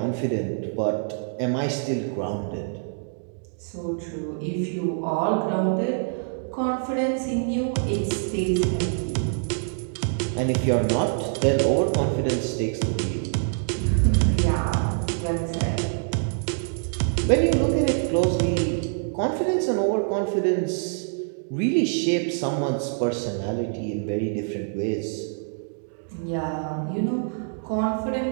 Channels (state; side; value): silent; left; digital silence